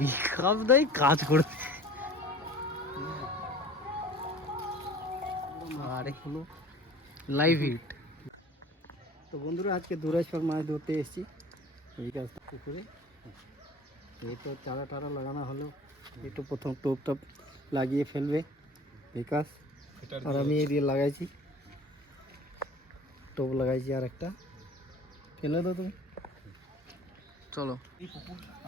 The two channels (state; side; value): normal; both; correlation 0.44